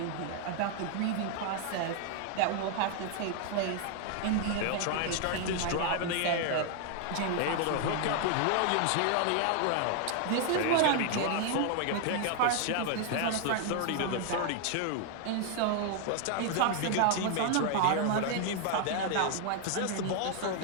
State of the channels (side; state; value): both; different; correlation 0.00